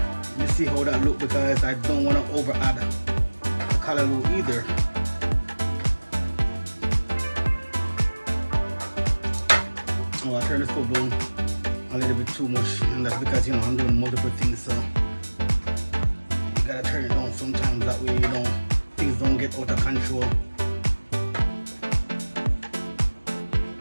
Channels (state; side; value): inverted; both; correlation -1.00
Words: You see how that look, because I don't wanna over add the callaloo either. Oh, I turned the stove down a little bit too much, and that's because I'm doing multiple things, so you gotta turn it down sometimes, that way things don't get out of control.